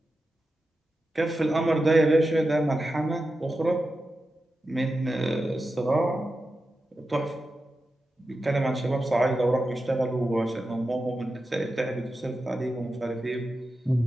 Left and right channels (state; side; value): normal; both; correlation 0.91